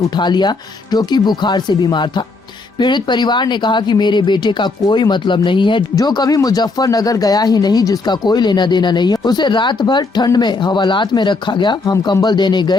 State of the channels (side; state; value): right; quieter; 3.7 dB